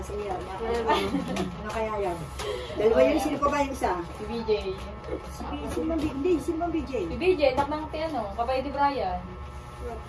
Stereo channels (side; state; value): both; identical; correlation 1.00